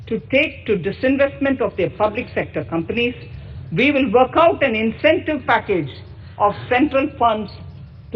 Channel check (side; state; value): both; identical; correlation 1.00